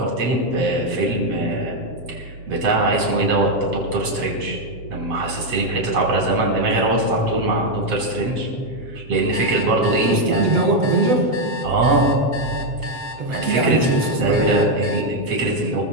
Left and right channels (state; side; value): late; left; 7.9 ms